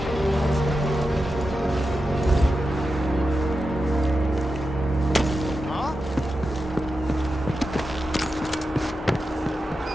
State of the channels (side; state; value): both; normal; correlation 0.90